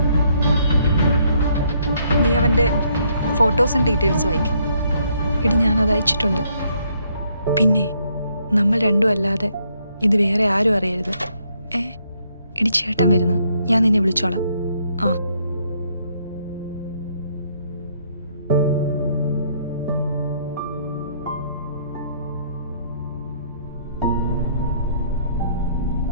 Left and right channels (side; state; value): both; inverted; correlation -0.70